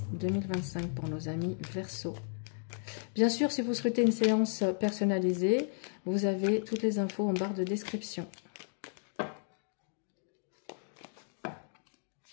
2025 pour nos amis Verseaux. Bien sûr, si vous souhaitez une séance personnalisée, vous avez toutes les infos en barre de description.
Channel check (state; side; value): silent; right; digital silence